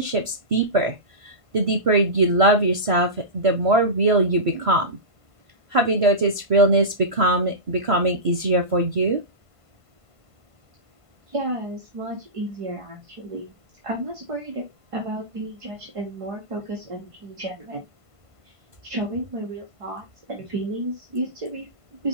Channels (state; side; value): late; left; 1.5 ms